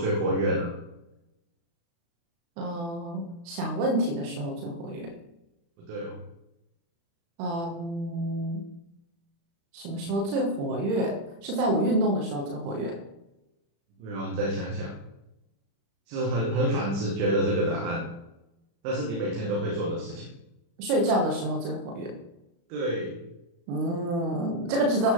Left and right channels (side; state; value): left; late; 35 ms